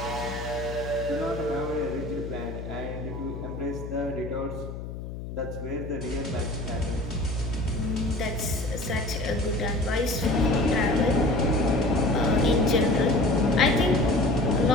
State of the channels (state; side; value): noise; left; hum, 9 dB below the sound